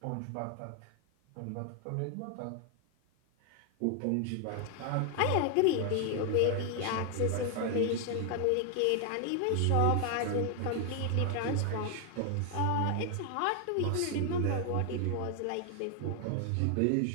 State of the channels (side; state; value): both; different; correlation 0.00